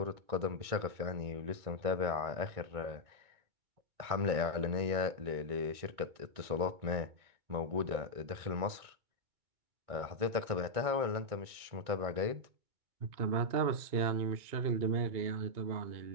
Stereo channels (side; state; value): left; late; 2.2 ms